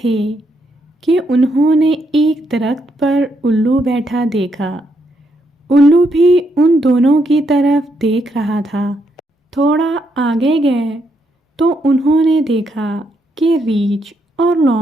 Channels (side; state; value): both; normal; correlation 0.77